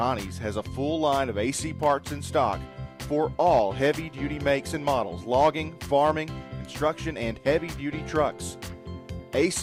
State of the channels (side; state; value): both; identical; correlation 1.00